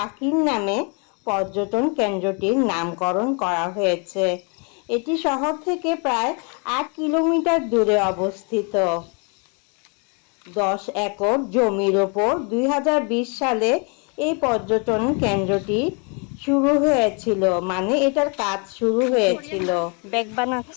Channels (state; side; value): quieter; right; 35.7 dB